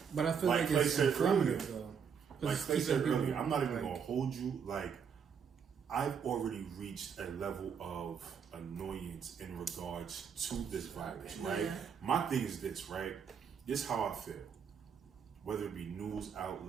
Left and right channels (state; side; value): quieter; left; 6.9 dB